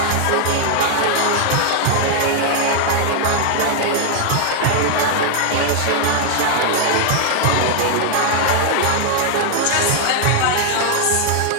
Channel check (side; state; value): both; different; correlation 0.00